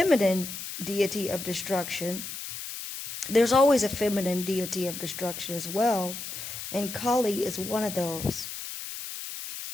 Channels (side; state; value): left; noise; hiss, 8 dB below the sound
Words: deity of destruction, there's always a feminine deity of destruction as well, and Kali is one of those.